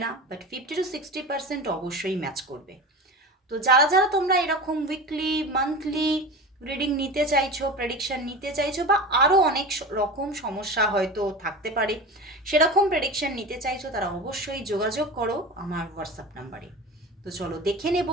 না, বাট 50 to 60% অবশ্যই ম্যাচ করবে। তো যারা যারা তোমরা এরকম উইকলি মান্থলি রিডিং নিতে চাইছো, প্রেডিকশন নিতে চাইছো, বা আরও অনেক রকম সমস্যা হয়তো থাকতে পারে, সেরকম প্রেডিকশন নিতে চাইছো, তারা অবশ্যই যোগাযোগ করো আমার হোয়াটসঅ্যাপ নাম্বারে। তো চলো দেখে নেব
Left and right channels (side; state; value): both; normal; correlation 0.30